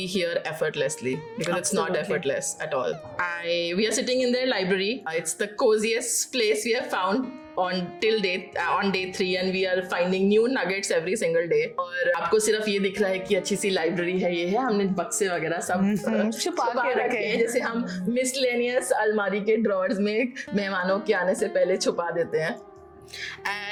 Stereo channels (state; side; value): identical; both; correlation 1.00